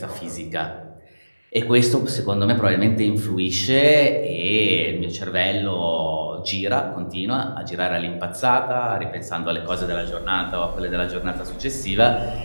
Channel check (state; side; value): inverted; both; correlation -1.00